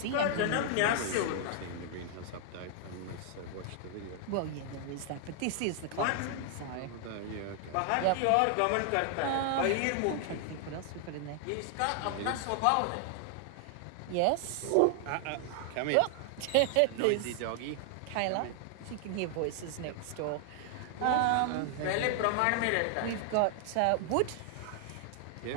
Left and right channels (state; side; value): different; both; correlation 0.00